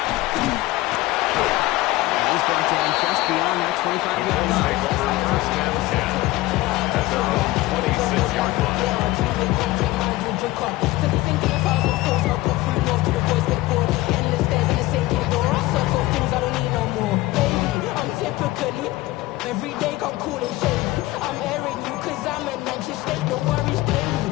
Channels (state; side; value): quieter; right; 18.5 dB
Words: he's brought down just beyond that 25-yard line. First down 10 at their own 26-yard line. Every day come cool and shady. I'm airing you cause I'm an anxious state. No worries